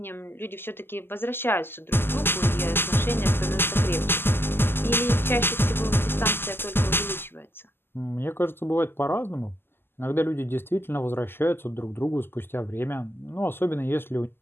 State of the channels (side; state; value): right; late; 0.11 ms